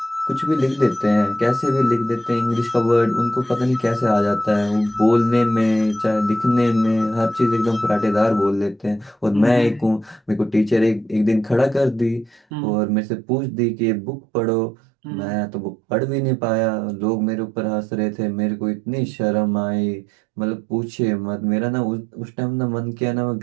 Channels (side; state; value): left; drops out; at 12.4 s